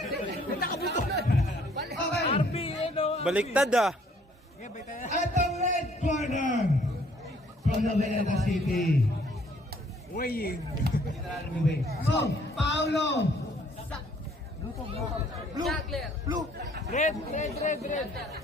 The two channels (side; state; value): both; normal; correlation 0.62